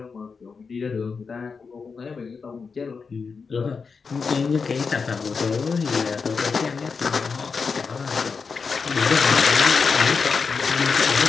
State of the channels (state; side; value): quieter; right; 5.2 dB